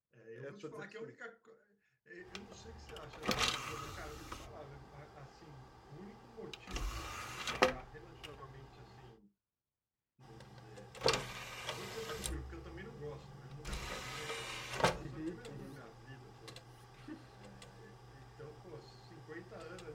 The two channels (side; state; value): both; identical; correlation 1.00